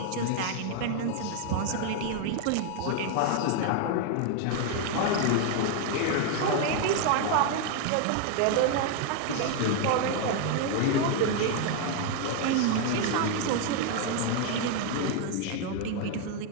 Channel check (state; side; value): different; both; correlation 0.00